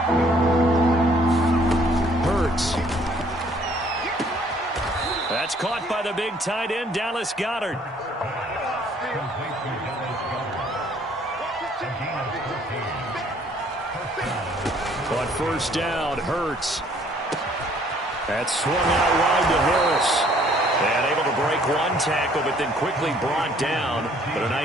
Hurts. That's caught by the big tight end, Dallas Goedert. On 1st down, Hurts. That's swung out wide to Harris. And able to break 1 tackle, but then quickly brought down. But a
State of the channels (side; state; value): both; normal; correlation 0.61